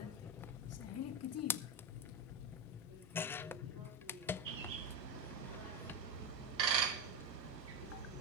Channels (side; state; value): both; normal; correlation 0.13